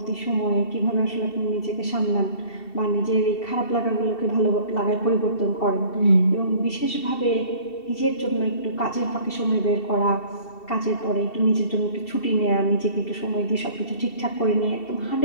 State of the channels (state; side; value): late; right; 2.7 ms